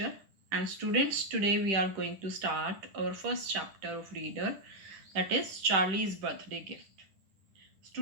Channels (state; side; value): late; left; 10 ms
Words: And students, today we are going to start our first chapter of Reader, that is Charlie's Birthday Gift.